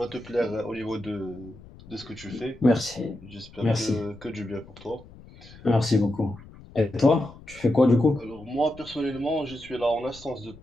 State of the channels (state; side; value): noise; left; rumble, 20 dB below the sound